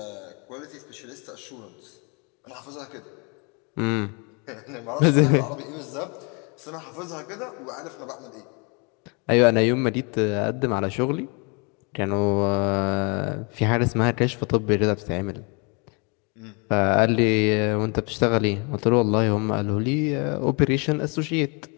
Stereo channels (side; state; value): right; quieter; 32.8 dB